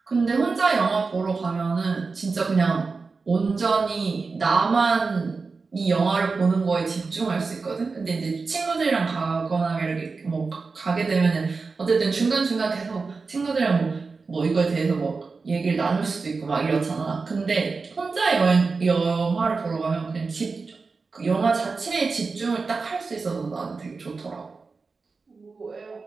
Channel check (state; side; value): quieter; left; 4.4 dB